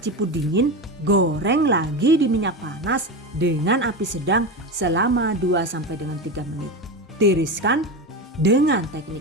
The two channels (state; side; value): normal; both; correlation 0.20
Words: dingin, goreng lagi di minyak panas dengan api sedang selama 2 sampai dengan 3 menit. Tiriskan, dengan